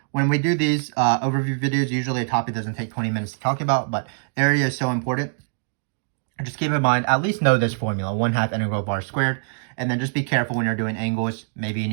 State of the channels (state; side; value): silent; left; digital silence